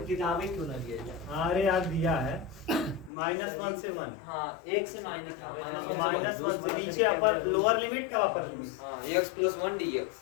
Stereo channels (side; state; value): right; drops out; at 3.1 s